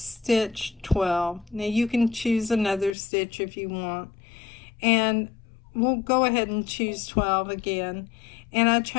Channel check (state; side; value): drops out; right; at 3.0 s